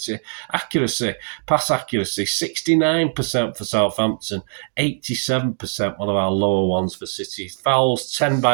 Pass accuracy 69% for Southampton, 87%, one of our lower ones for City. Fouls 10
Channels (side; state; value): left; silent; digital silence